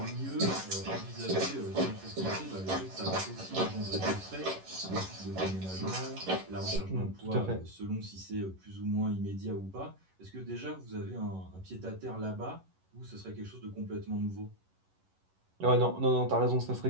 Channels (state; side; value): late; left; 11 ms